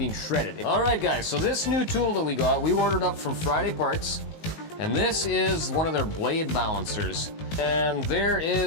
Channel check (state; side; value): late; right; 19 ms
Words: shredded. All right, guys, so this new tool that we got, we ordered up from FridayParts, and this is one of their blade balancers. And there